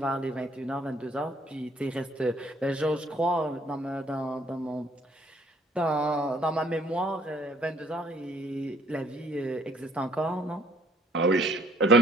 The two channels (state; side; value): normal; both; correlation 0.62